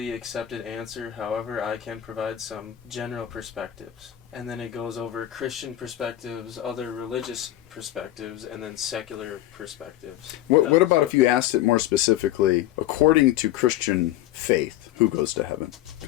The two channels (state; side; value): quieter; right; 13.6 dB